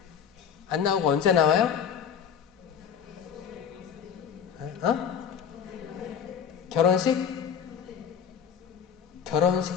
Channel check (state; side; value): quieter; right; 7.8 dB